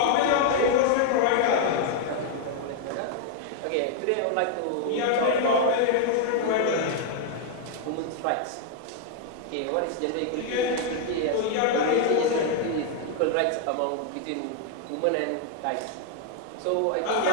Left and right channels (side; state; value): both; different; correlation 0.00